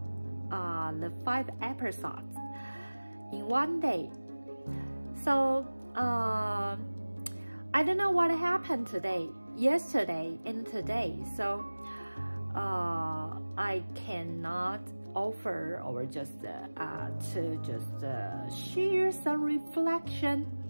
the 5 episodes in one day. So I don't know what happened yesterday and today. So I cannot offer or just share some reflection.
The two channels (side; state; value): both; inverted; correlation -1.00